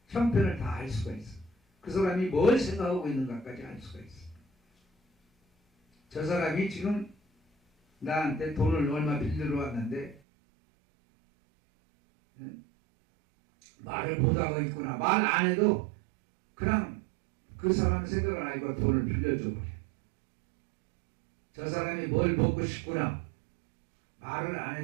형편을 다 알 수가 있어. 그 사람이 뭘 생각하고 있는가까지 알 수가 있어. 저 사람이 지금 나한테 돈을 얼마 빌리러 왔는데 말을 못하고 있구나. 말 안 해도 그냥 그 사람 생각을 알고 돈을 빌려줘 버려. 저 사람이 뭘 먹고 싶구나. 말을 안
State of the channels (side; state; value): left; drops out; at 10.2 s